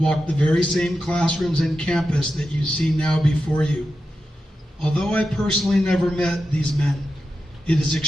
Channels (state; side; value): normal; both; correlation 0.90